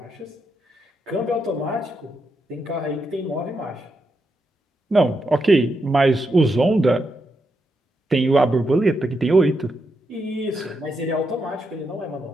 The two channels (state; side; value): normal; both; correlation 0.83